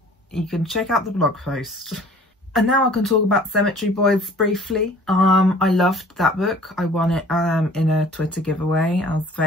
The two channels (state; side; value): normal; both; correlation 0.50